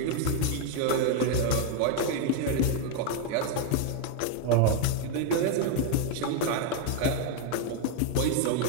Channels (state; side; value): different; both; correlation 0.00